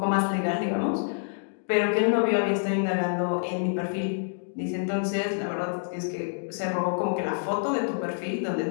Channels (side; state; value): right; silent; digital silence